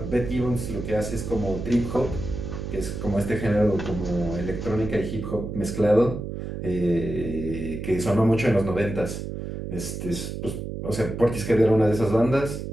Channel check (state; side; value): noise; right; hum, 6 dB below the sound